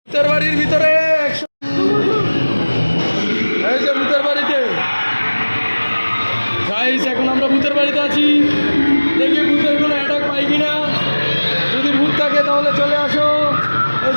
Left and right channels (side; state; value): both; inverted; correlation -1.00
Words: ভূতের বাড়ির ভিতরে এই যে ভূতের বাড়িতে গাইস, এখন আমরা ভূতের বাড়িতে আছি। দেখি ভূতের কোনো অ্যাটাক পাই কিনা। যদি ভূত থাকে তাহলে চলে আসো। এই